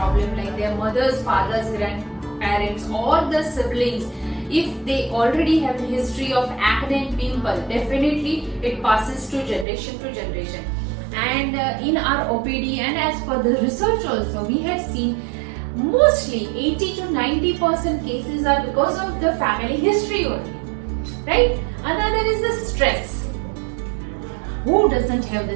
like their mothers, fathers, grandparents, or the siblings, if they already have a history of acne and pimple, definitely it passes to generation to generation. And in our OPD and as per the research also, we have seen mostly 80 to 90% cases are because of the family history only, right? Another is the stress. Who doesn't have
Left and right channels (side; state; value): left; drops out; at 9.7 s